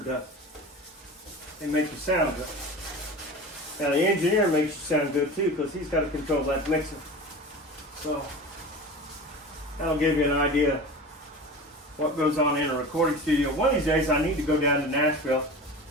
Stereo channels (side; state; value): both; normal; correlation 0.33